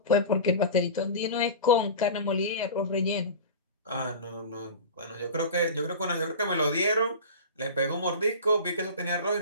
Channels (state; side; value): inverted; both; correlation -0.31